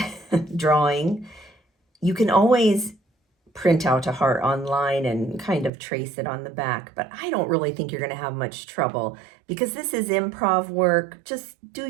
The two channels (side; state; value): left; drops out; at 5.7 s